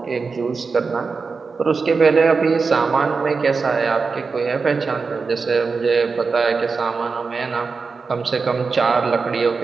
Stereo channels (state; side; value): quieter; left; 4.7 dB